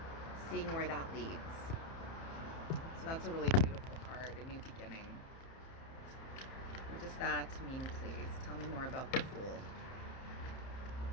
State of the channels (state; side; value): late; right; 30 ms